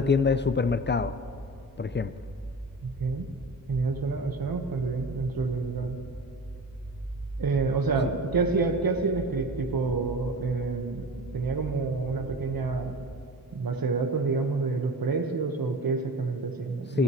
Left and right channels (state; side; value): normal; both; correlation 0.34